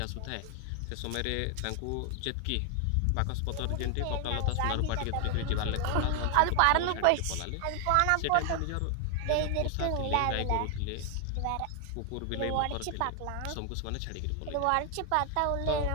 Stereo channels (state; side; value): different; both; correlation 0.00